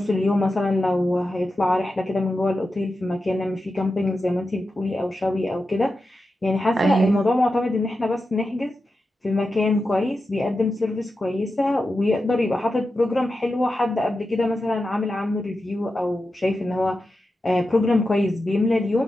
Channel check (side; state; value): both; normal; correlation 0.91